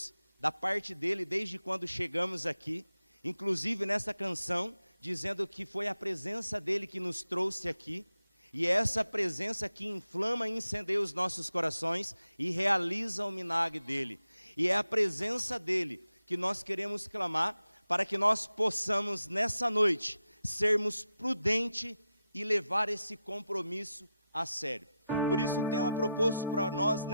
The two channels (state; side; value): inverted; both; correlation -0.89